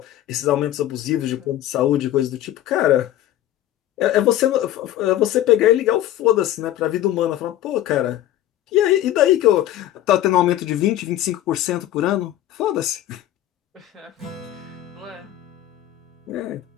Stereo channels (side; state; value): right; quieter; 13.1 dB